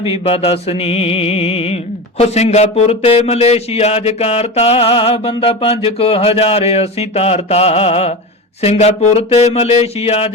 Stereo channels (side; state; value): both; normal; correlation 0.25